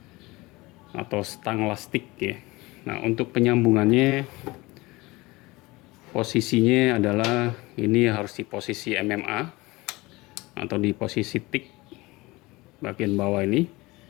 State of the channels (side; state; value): right; quieter; 21.9 dB